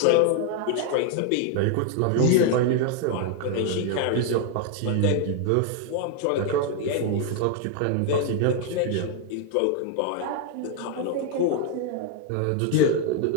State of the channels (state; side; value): different; both; correlation 0.00